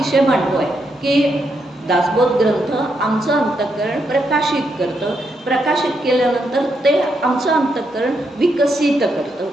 मांडतो आहे की दासबोध ग्रंथ आमचं अंतःकरण प्रकाशित करतं. प्रकाशित केल्यानंतर ते आमचं अंतःकरण विकसित करतं.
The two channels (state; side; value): normal; both; correlation 0.80